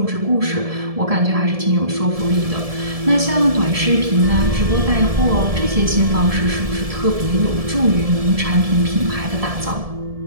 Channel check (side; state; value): left; late; 1.7 ms